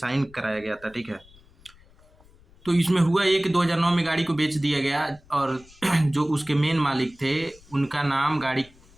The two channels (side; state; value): left; noise; rumble, 27 dB below the sound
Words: कराया गया था, ठीक है। तो इसमें हुआ ये कि 2009 में गाड़ी को बेच दिया गया और जो उसके मेन मालिक थे उनका नाम गाड़ी